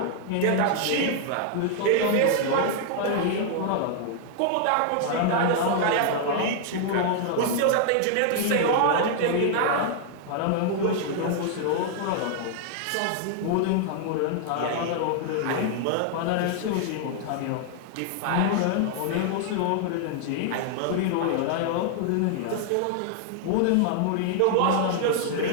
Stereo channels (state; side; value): different; both; correlation 0.00